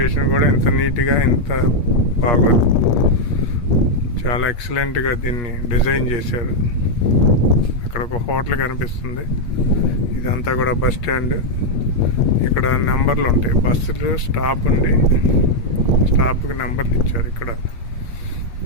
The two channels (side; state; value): right; late; 8.4 ms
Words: కూడా ఇంత నీట్గా ఇంత బాగోదు. చాలా ఎక్సలెంట్గా దీన్ని డిజైన్ చేశారు. అక్కడ ఒక హోటల్ కనిపిస్తుంది. ఇదంతా కూడా బస్ స్టాండ్. ఇక్కడ నెంబర్లు ఉంటాయి. బస్సులు స్టాప్ ఉండి స్టాప్కి నెంబర్లు ఇచ్చారు. ఇక్కడ